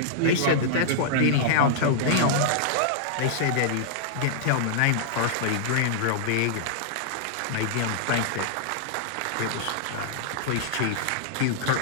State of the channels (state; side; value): different; both; correlation -0.02